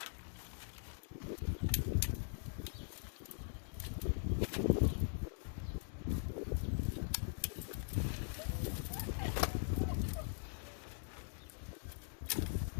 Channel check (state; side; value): silent; right; digital silence